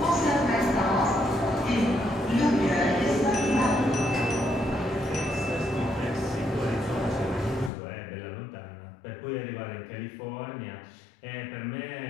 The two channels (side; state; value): right; drops out; at 7.7 s